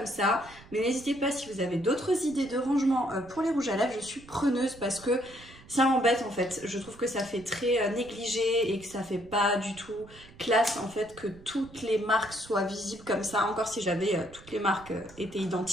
ça. Mais n'hésitez pas si vous avez d'autres idées de rangement pour les rouges à lèvres. Je suis preneuse parce que ça m'embête en fait. Je trouve que ça fait très négligé et que ça fait pas du tout classe en fait que toutes les marques soient visibles comme ça. Encore si j'avais toutes les marques étaient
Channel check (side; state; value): right; noise; rumble, 21 dB below the sound